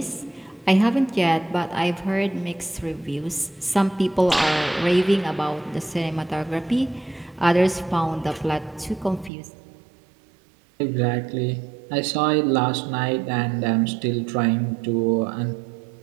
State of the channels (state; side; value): drops out; left; at 9.3 s